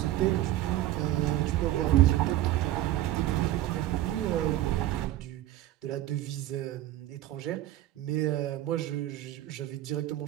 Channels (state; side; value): quieter; left; 14.2 dB